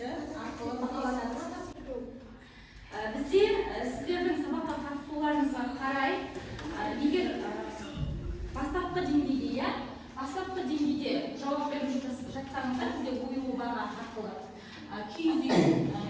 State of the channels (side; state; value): both; identical; correlation 1.00